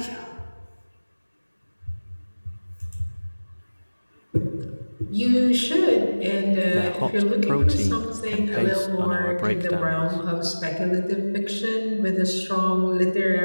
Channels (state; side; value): inverted; both; correlation -1.00